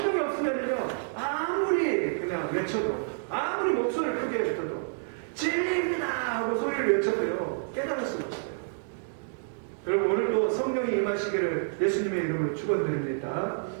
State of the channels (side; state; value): left; silent; digital silence